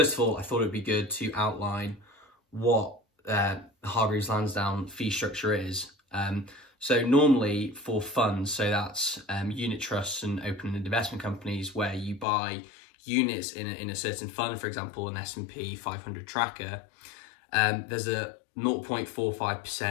of all, I thought it'd be good to outline what Hargreaves Lansdown fee structure is. So normally for funds, so that's unit trusts and open-ended investment companies where you buy units in a certain fund, for example, an S&P 500 tracker, there's a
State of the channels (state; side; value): drops out; right; at 12.2 s